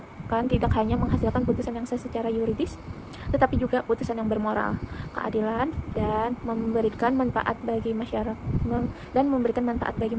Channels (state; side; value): identical; both; correlation 1.00